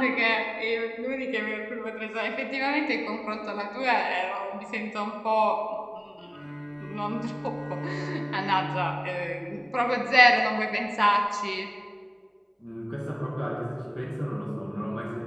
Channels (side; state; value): both; identical; correlation 1.00